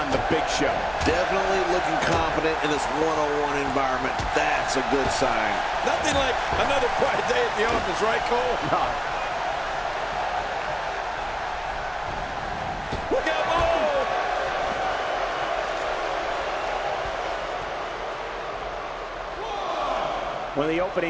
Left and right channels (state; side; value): identical; both; correlation 1.00